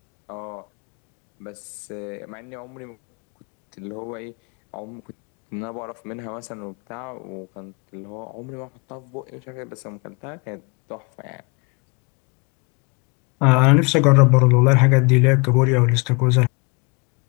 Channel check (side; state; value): right; quieter; 30.6 dB